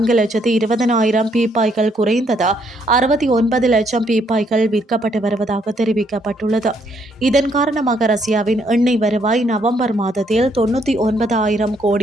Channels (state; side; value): normal; both; correlation 0.71